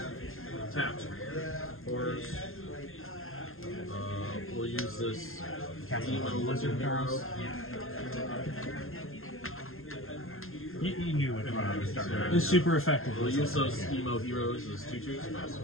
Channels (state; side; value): late; right; 0.61 ms